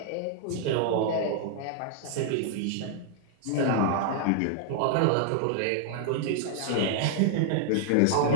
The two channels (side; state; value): both; different; correlation -0.01